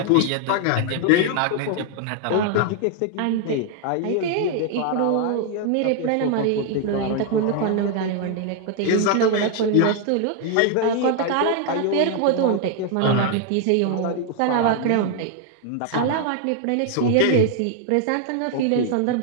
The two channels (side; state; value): both; different; correlation 0.00